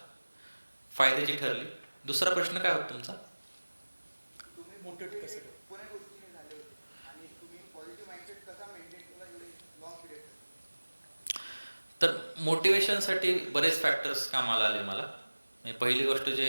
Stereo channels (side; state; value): both; inverted; correlation -1.00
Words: फायद्याची ठरली. दुसरा प्रश्न काय होता तुमचा? तुम्ही मोटिवेट कसं कोण्या गोष्टीने झाले होते आणि तुम्ही पॉझिटिव्ह माइंडसेट कसा मेंटेन केला एवढे लॉंग पिरियड? तर मोटिवेशनसाठी बरेच फॅक्टर्स कामाला आले मला. पहिली गोष्ट जे